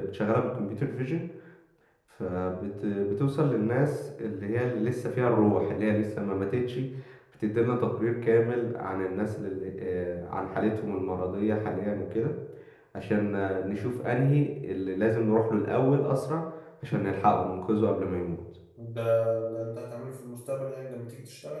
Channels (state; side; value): identical; both; correlation 1.00